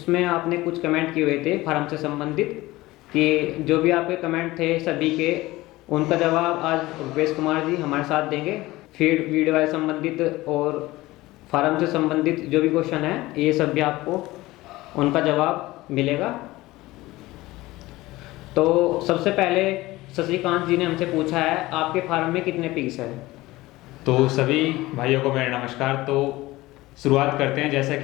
आपने कुछ कमेंट किए हुए थे फार्म से संबंधित, कि जो भी आपके कमेंट थे सभी के उनका जवाब आज रुपेश कुमार जी हमारे साथ देंगे। फीड वीडियो से संबंधित और फार्म से संबंधित जो भी क्वेश्चन है, ये सब भी आपको उनका जवाब मिलेगा। तो सबसे पहले शशिकांत जी ने हमसे पूछा है, आपके फार्म में कितने पिग्स हैं? तो सभी भाइयों को मेरा नमस्कार। तो शुरुआत करते हैं। जैसा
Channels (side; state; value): right; quieter; 18.8 dB